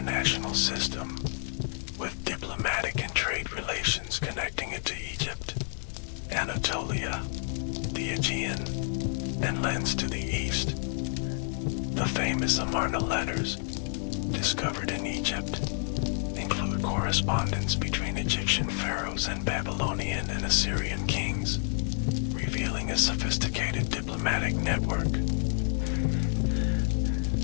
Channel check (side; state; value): right; silent; 58 dB below the other